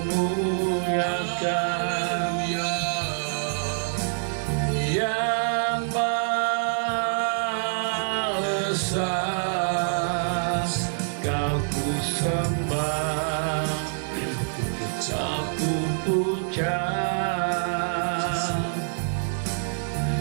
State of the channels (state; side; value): silent; left; digital silence